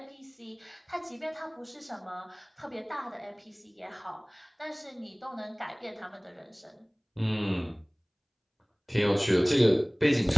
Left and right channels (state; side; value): identical; both; correlation 1.00